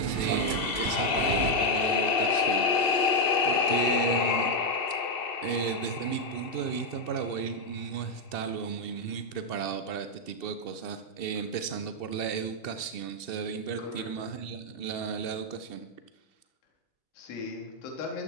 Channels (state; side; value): late; right; 2.7 ms